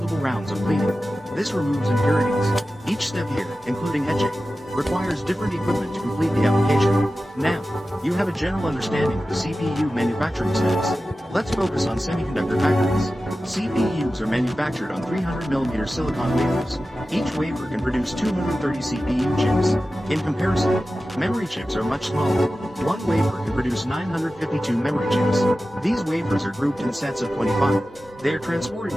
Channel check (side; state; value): both; normal; correlation 0.94